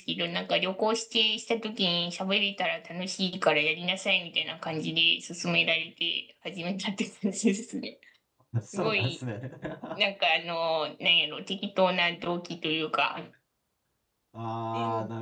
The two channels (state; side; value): identical; both; correlation 1.00